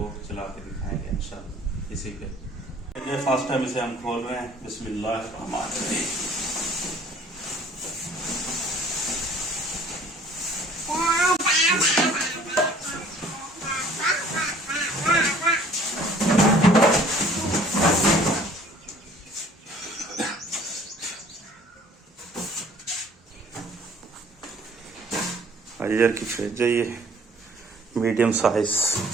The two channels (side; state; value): both; normal; correlation 0.54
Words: चला के दिखाएंगे इंशाल्लाह इसी पे। ये फर्स्ट टाइम इसे हम खोल रहे हैं, बिस्मिल्लाहिर्रहमानिर्रहीम। हायर की फ्रिज है ये, मीडियम साइज।